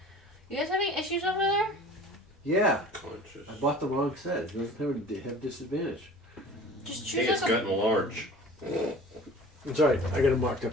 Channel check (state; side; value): normal; both; correlation 0.43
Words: You guys have any issues over there? Yeah, Conscious. I bought the wrong set. It doesn't have disadvantage. Just Hey, choose it's like a... gotten large. It's alright. I got it marked